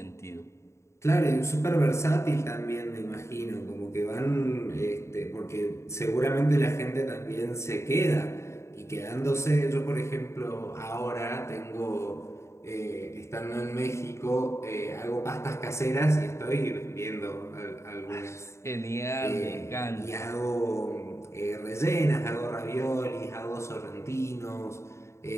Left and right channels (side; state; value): right; late; 0.13 ms